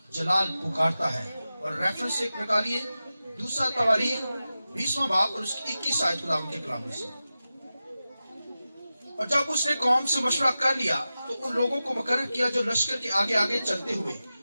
جلال پکارتا ہے. اور ریفرنس ایک نکالیے دوسرا تواریخ 20واں باب اور اس کی 21 آیت خداوند کے کلام میں سے. اور جب اس نے قوم سے مشورہ کر لیا تو ان لوگوں کو مقرر کیا جو لشکر کے آگے آگے چلتے ہوئے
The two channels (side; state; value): both; inverted; correlation -0.94